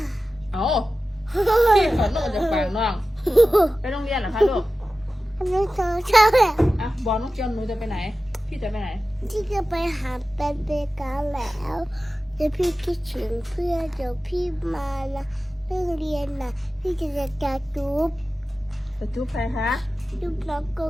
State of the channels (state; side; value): normal; both; correlation 0.95